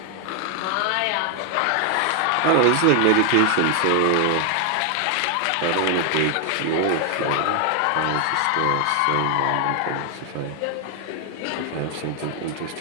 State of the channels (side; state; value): both; different; correlation 0.00